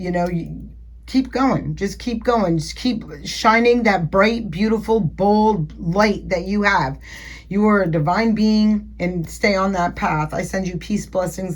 know, keep going. Just keep going. Just keep shining that bright, beautiful, bold light that you have. You are a divine being, and stay on that path. I send you peace,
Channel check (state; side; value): identical; both; correlation 1.00